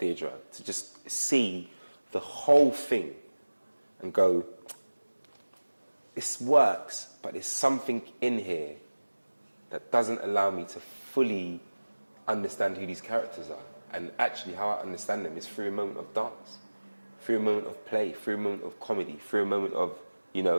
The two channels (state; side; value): inverted; both; correlation -1.00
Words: to just see the whole thing and go, this works, but there's something in here that doesn't allow me to fully understand who these characters are. And actually how I understand them is through a moment of dance, through a moment of play, through a moment of comedy, through a moment of,